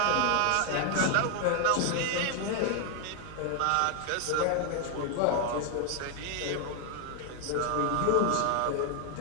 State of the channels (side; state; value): both; different; correlation 0.00